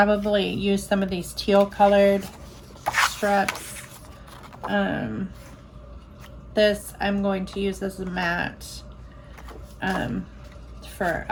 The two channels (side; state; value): both; identical; correlation 1.00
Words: use some of these teal colored strips. This I'm going to use as a mat for